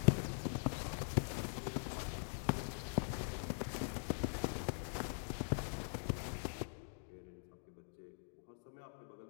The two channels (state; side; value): silent; right; digital silence